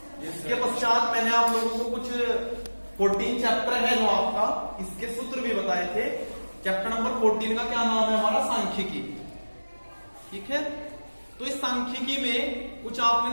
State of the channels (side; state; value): both; inverted; correlation -1.00